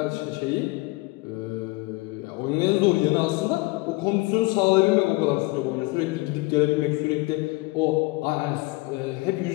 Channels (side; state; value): right; quieter; 22.8 dB